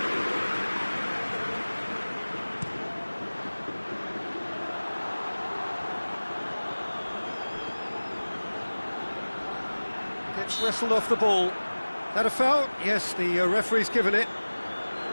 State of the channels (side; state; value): both; inverted; correlation -1.00